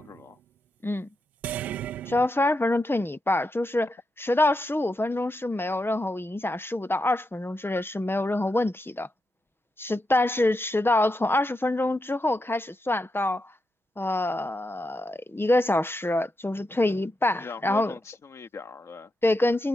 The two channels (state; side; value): normal; both; correlation 0.86